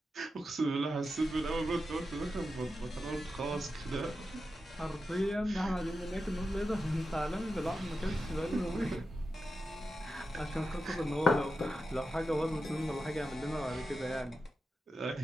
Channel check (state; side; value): normal; both; correlation 0.90